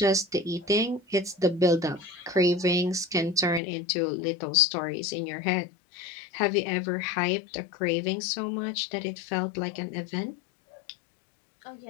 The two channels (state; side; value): drops out; right; at 3.6 s